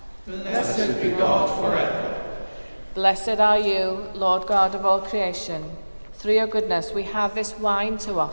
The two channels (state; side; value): inverted; both; correlation -1.00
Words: Blessed be God forever. Blessed are you, Lord God of all creation. Through your goodness we have this wine to